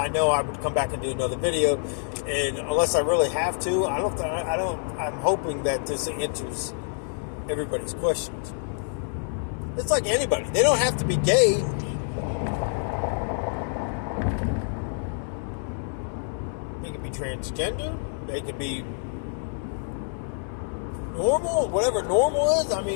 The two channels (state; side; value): silent; right; digital silence